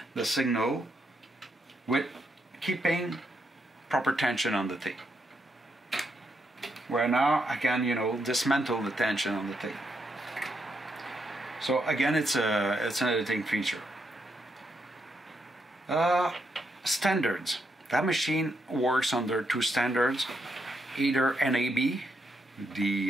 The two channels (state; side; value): normal; both; correlation 0.80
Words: the signal with keeping proper tension on the tape. Where now I can, dismantle the tension on the tape. So again, it's an editing feature. Standards. That machine works under 2 standards, either NAB,